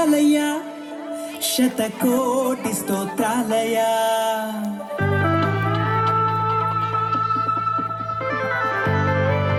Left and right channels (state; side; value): identical; both; correlation 1.00